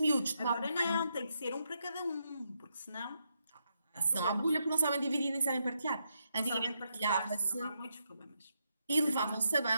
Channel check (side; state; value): both; inverted; correlation -0.81